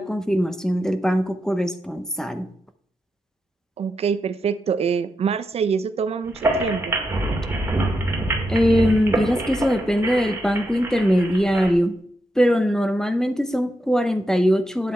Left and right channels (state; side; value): normal; both; correlation 0.85